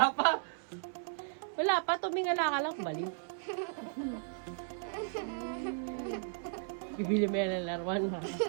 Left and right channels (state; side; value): silent; left; 54 dB below the other